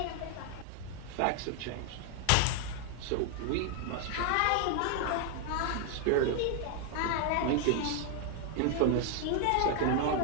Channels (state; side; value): different; both; correlation 0.00